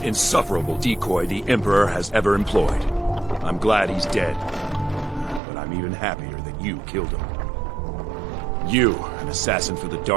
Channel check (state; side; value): drops out; left; at 5.4 s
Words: insufferable decoy the Emperor has ever employed. I'm glad he's dead. But I'm even happier that you killed him. You, an assassin for the